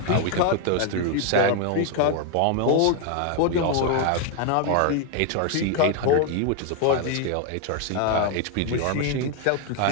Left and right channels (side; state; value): both; different; correlation 0.01